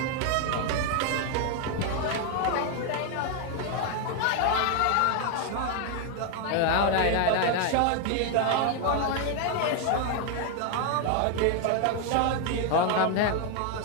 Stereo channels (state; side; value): different; both; correlation 0.01